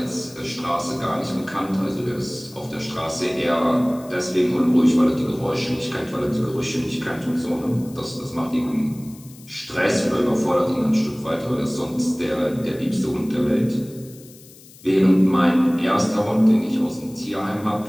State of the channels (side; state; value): left; noise; hiss, 22 dB below the sound